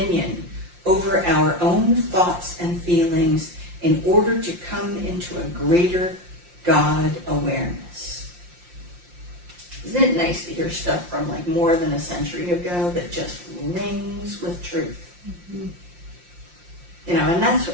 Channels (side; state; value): left; late; 5.7 ms